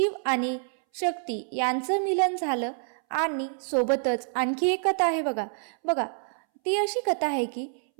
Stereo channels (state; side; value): silent; left; 60 dB below the other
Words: आणि शक्ती यांचं मिलन झालं. आणि सोबतच आणखी एक कथा आहे. बघा ती अशी कथा आहे की